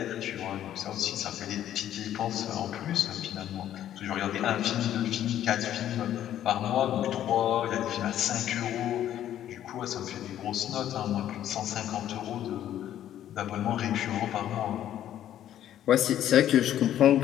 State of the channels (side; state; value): right; quieter; 11.4 dB